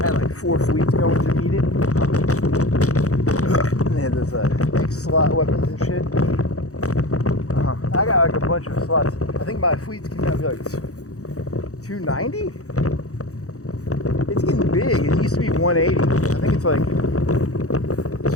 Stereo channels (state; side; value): late; right; 0.65 ms